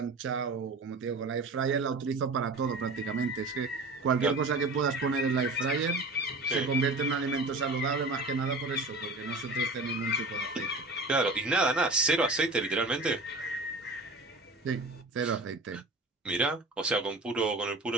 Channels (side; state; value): left; quieter; 3.0 dB